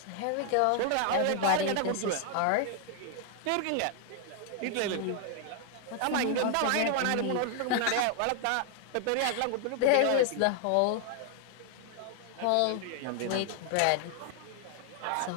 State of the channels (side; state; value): both; different; correlation 0.00